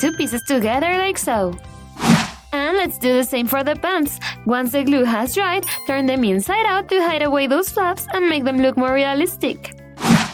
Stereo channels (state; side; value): identical; both; correlation 1.00